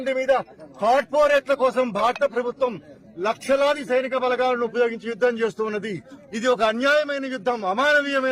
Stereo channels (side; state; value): both; identical; correlation 1.00